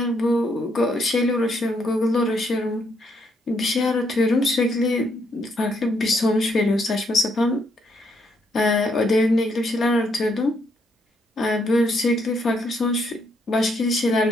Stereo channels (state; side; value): normal; both; correlation 0.74